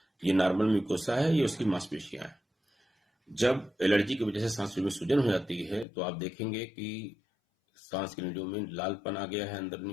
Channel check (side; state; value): right; drops out; at 5.9 s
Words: ये नॉर्मल म्यूकोसा है, ये उसकी मांसपेशियां है। जब एलर्जी की वजह से सांस में सूजन हो जाती है तो आप देखेंगे कि सांस की नलियों में लालपन आ गया है